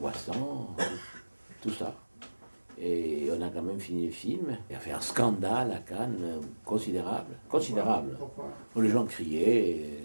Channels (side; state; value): both; inverted; correlation -1.00